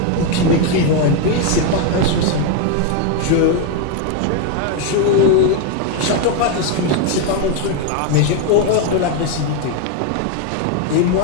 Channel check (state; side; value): different; both; correlation 0.01